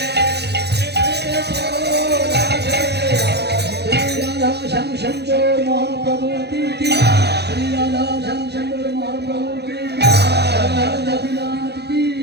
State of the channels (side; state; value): left; late; 0.48 ms